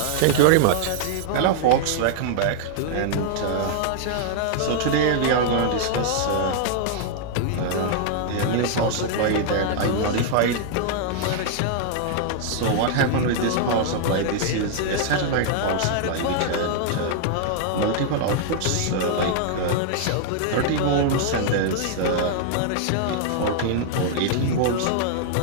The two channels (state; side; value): different; both; correlation -0.01